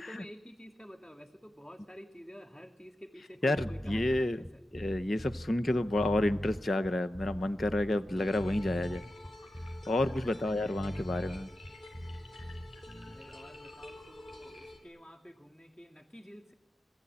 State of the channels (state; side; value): normal; both; correlation 0.91